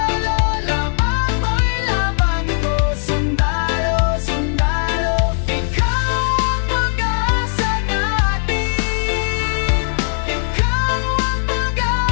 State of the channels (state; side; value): silent; right; 67 dB below the other